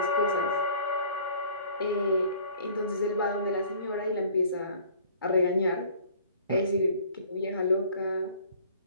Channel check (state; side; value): inverted; both; correlation -0.51